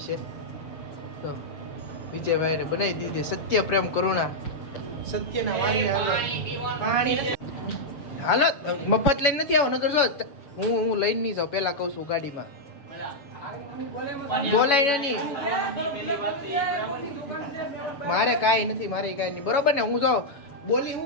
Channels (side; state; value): right; late; 7.1 ms